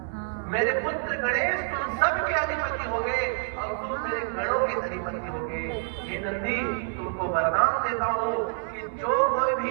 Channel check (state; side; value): silent; left; 60 dB below the other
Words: मेरे पुत्र गणेश तुम सबके अधिपति होगे और तुम मेरे गणों के अधिपति होगे। हे नंदी, तुमको वरदान देता हूँ कि जो कोई